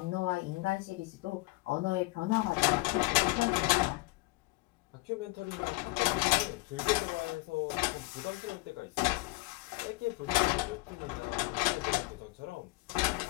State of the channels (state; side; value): quieter; right; 23.0 dB